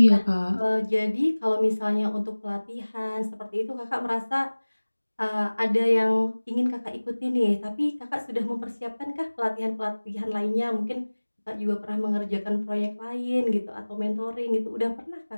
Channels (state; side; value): inverted; both; correlation -1.00